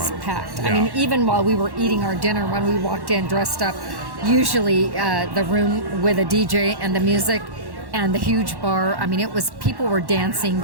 packed. Yeah. I mean, even while we were eating our dinner, when we walked in dressed up, usually the room with a DJ and the music and the huge bar, I mean, people were dancing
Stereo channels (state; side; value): late; left; 1.1 ms